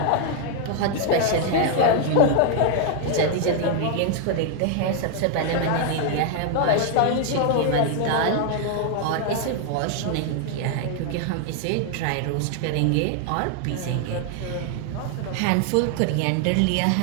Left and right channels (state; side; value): different; both; correlation 0.00